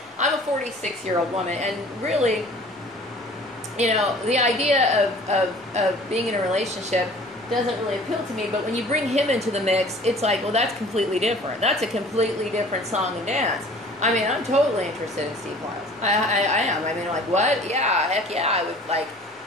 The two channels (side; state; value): both; normal; correlation 0.48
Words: I'm a 46-year-old woman, and really, the idea of being in a relationship doesn't really appeal to me, but when you bring him into the mix, it's like, well, that's completely different. That's a completely different song and dance. I mean, I'm totally interested in Steve Liles. I am. I mean, like, what? Yeah, heck yeah,